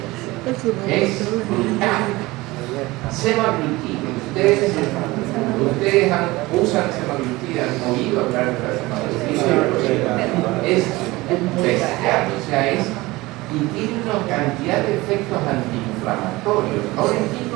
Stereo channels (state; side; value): quieter; left; 20.6 dB